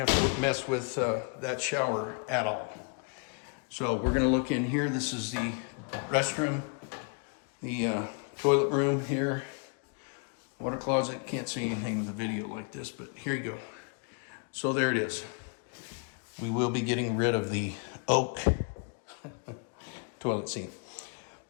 to mess with that shower at all. So we're going to look in here. This is the restroom, the toilet room here, water closet. Can't see anything in the video like this, but here you go. So there it is. We will be getting rid of the oak toilet seat.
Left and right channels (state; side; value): quieter; right; 37.9 dB